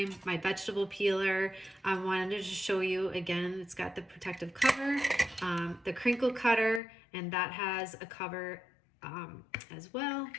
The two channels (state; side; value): drops out; right; at 6.8 s